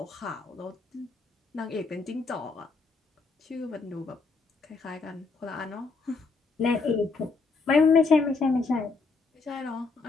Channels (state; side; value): quieter; right; 4.2 dB